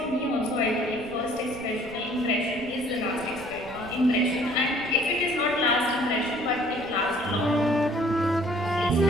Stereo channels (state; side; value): noise; right; rumble, 19 dB below the sound